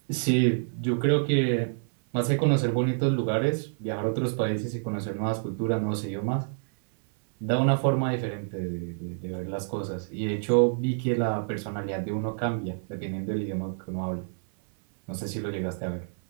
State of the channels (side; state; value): left; silent; 58 dB below the other